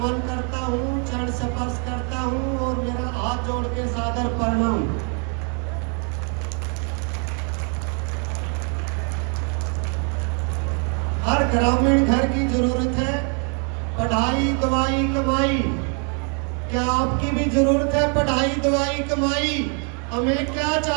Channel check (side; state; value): left; quieter; 39.2 dB